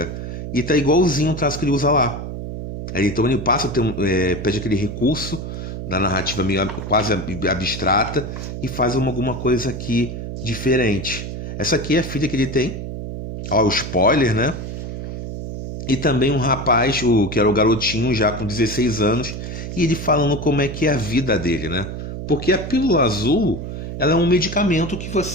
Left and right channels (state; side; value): noise; right; hum, 7 dB below the sound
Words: E tá igualzinho o traço que ele usa lá. Então ele passa, pede aquele recurso da narrativa meio quase abstrata e faz alguma coisa aqui diferente. Essa aqui é a filha que ele tem. Ó, o spoiler, né? E também um rapaz, que era o garotinho já com 16 anos, e ele falando como é que é a vida dele, né? Porque a pílula azul, ela é um medicamento